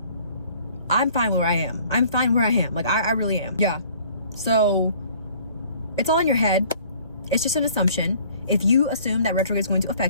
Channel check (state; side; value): inverted; both; correlation -0.55